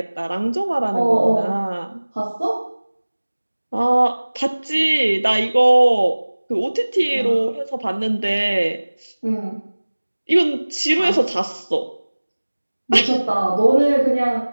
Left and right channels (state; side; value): inverted; both; correlation -1.00